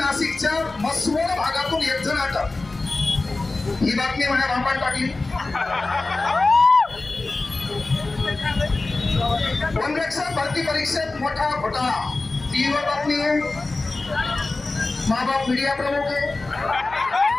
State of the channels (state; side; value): quieter; right; 3.3 dB